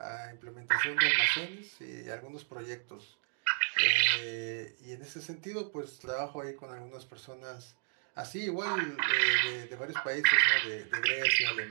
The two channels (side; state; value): left; silent; digital silence